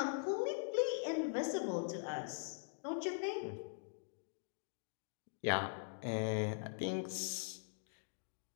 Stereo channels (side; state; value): right; silent; digital silence